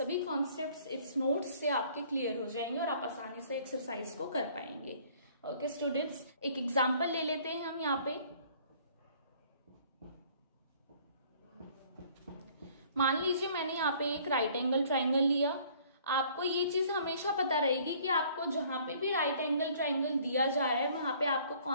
कॉन्सेप्ट्स इट्स नोट्स से आपके क्लियर हो जाएंगे और आप आसानी से एक्सरसाइज को कर पाएंगे। ओके स्टूडेंट्स, एक एग्जाम्पल ले लेते हैं हम यहाँ पे। मान लीजिए मैंने यहाँ पे एक राइट एंगल ट्राइंगल लिया। आपको ये चीज हमेशा पता रहेगी कि आपको जहां पे भी राइट एंगल ट्राइंगल दिया जा रहा है वहां पे आपको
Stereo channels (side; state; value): both; inverted; correlation -0.57